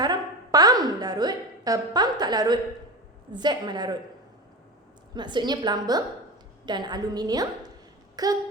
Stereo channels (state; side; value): normal; both; correlation 0.26